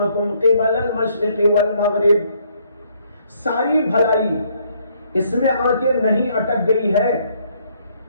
قبل المشرق والمغرب، ساری بھلائی اس میں آ کے نہیں اٹک گئی ہے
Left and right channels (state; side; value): inverted; both; correlation -0.68